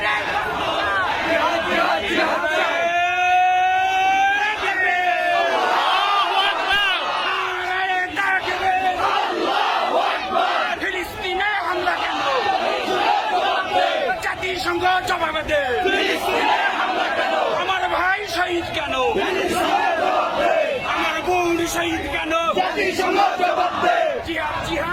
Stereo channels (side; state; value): both; identical; correlation 1.00